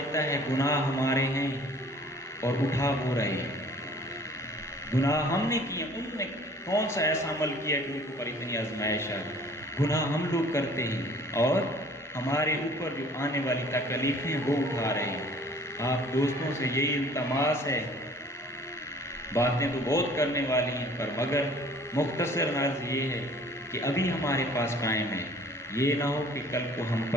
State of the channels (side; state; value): both; normal; correlation 0.52